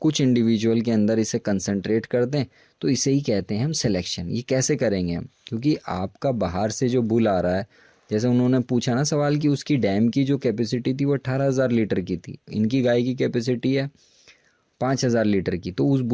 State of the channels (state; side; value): identical; both; correlation 1.00